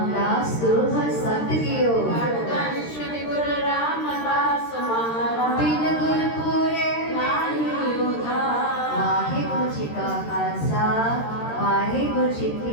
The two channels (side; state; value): right; late; 13 ms